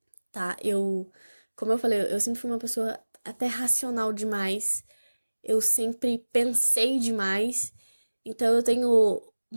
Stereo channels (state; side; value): inverted; both; correlation -1.00